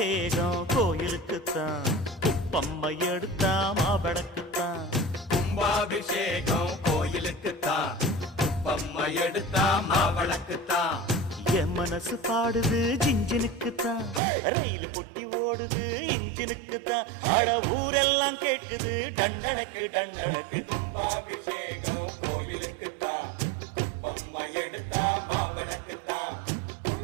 கோயிலுக்குத்தான், குப்பம்மை எடுத்தா மாவடக்குத்தான். கும்பாபிஷேகம் கோயிலுக்குத்தான், குப்பம்மை எடுத்தா மாவளக்குத்தான். என் மனசு பாடுது ஜிஞ்சினுக்குத்தான், ரயில் பொட்டி ஓடுது இன்ஜினுக்குத்தான். அட ஊரெல்லாம் கேட்குது டண்டனக்கு டண்டனக்கு. கும்பாபிஷேகம் கோயிலுக்குத்தான், குப்பம்மை எடுத்தா மாவளக்குத்தான்.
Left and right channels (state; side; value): drops out; left; at 14.2 s